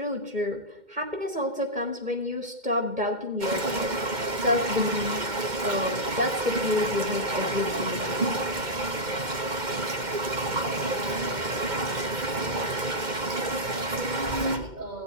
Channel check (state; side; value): late; left; 2.1 ms